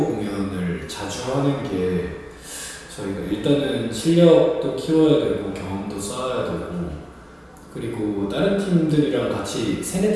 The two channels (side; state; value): both; identical; correlation 1.00